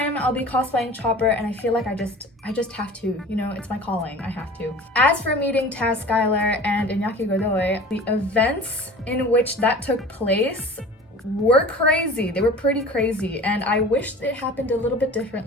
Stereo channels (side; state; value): both; normal; correlation 0.40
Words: I'll be cosplaying Chopper, and I feel like I just have to, you know, it's my calling, I have to. As for meeting Skyler and Iñaki Godoy, the events in which that took place were crazy. They were pretty crazy, and I wished it happened a little bit